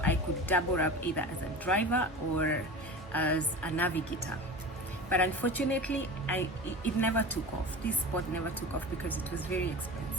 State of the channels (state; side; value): normal; both; correlation 0.32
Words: I could double up either as a driver or as a navigator. But unfortunately, it never took off. This sport never took off because it was very